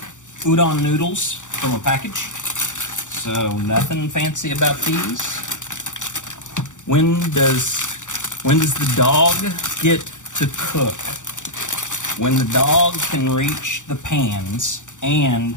udon noodles from a package. So nothing fancy about these. When does the dog get to cook? When the dog can reach the pans and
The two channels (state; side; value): late; right; 0.86 ms